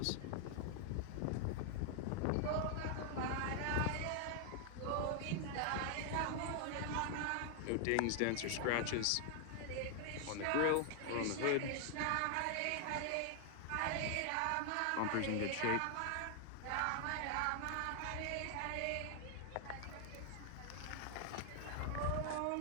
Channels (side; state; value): both; different; correlation 0.00